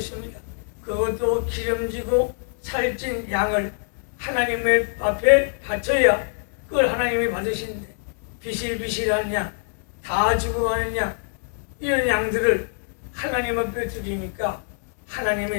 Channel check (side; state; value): right; silent; digital silence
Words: 그것도 기름지고 살찐 양을 하나님의 앞에 바쳐야 그걸 하나님이 받으시는데 비실비실한 양, 다 죽어가는 양, 이런 양들을 하나님 앞에 드리니까